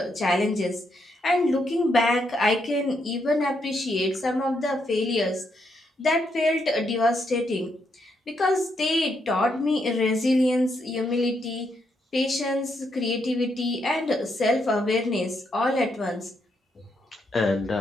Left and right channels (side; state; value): both; normal; correlation 0.78